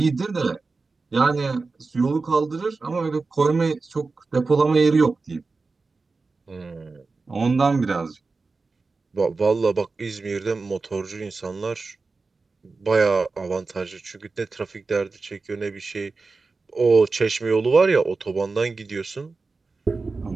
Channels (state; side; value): quieter; left; 4.0 dB